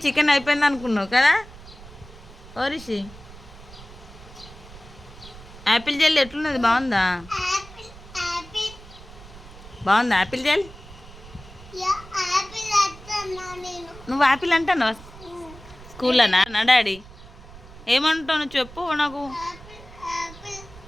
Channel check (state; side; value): noise; right; rumble, 18 dB below the sound